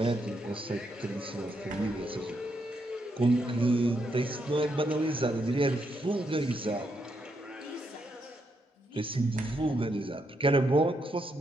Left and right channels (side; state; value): both; normal; correlation 0.79